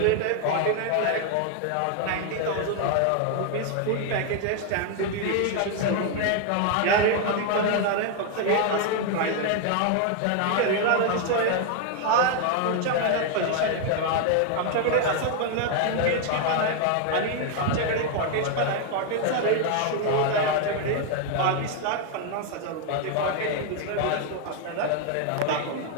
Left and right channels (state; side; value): different; both; correlation 0.00